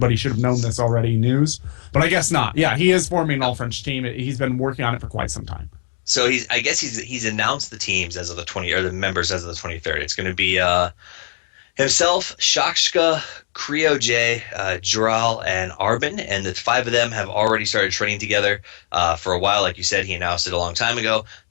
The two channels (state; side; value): silent; right; digital silence